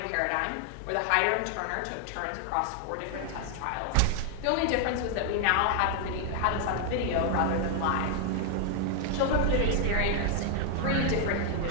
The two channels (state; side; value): different; both; correlation 0.00